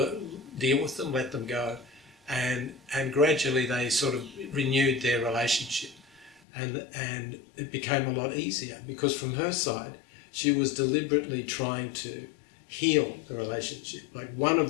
deal with them, let them go, and gradually they sort of renewed their relationship, and it became a lot easier, because from her side she was deliberately trying to heal the relationship. Like, one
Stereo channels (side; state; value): right; drops out; at 6.4 s